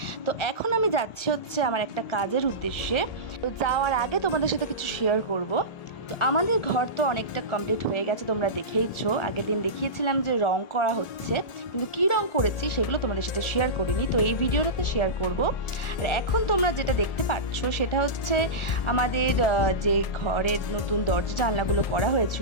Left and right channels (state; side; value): late; right; 1.8 ms